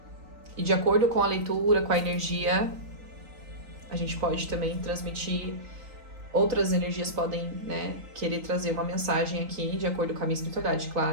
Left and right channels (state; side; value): late; left; 3.9 ms